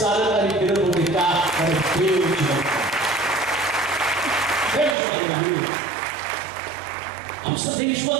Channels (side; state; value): left; drops out; at 5.0 s